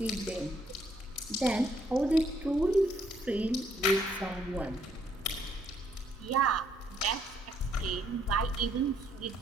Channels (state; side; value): normal; both; correlation 0.69